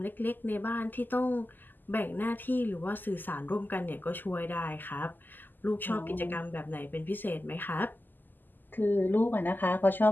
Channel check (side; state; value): right; late; 0.089 ms